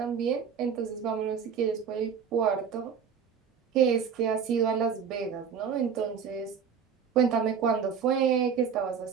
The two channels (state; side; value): quieter; left; 6.9 dB